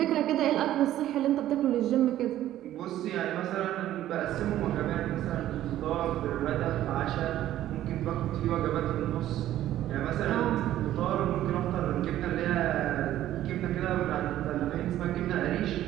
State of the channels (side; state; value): left; quieter; 13.1 dB